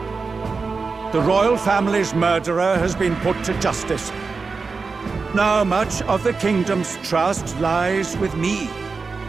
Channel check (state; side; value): quieter; left; 4.5 dB